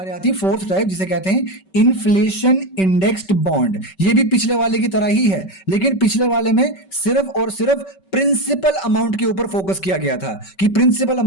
आती है फोर्थ टाइप, जिसे कहते हैं इन्फ्लेशन इंडेक्स्ड बॉन्ड। ये भी पिछले वाले की तरह ही है, लेकिन पिछले वाले में सिर्फ और सिर्फ प्रिंसिपल अमाउंट के ऊपर फोकस किया गया था कि प्रिंसिपल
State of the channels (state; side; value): late; right; 5.2 ms